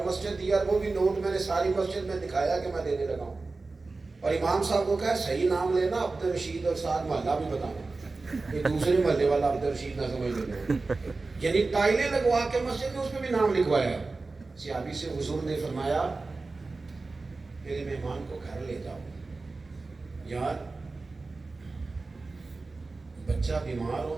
مسجد دیا, اور وہ بھی نوٹ میں نے ساری مسجد میں دکھایا کہ میں دینے لگا ہوں. اور امام صاحب کو کہا صحیح نام لینا, عبد الرشید, اور ساتھ محلہ بھی بتانا کہ دوسرے محلے والا عبد الرشید نہ سمجھ لینا. یعنی ٹائلیں لگوا کے مسجد میں اس میں بھی نام لکھوایا. صحابی سے حضور نے فرمایا میرے مہمان کو گھر لے جاؤ. یار بچہ بیمار ہو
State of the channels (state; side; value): quieter; left; 3.7 dB